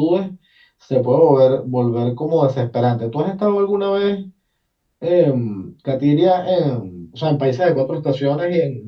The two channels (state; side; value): identical; both; correlation 1.00